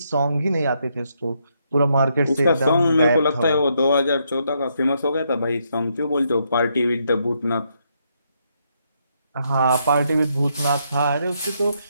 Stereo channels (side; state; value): both; inverted; correlation -0.77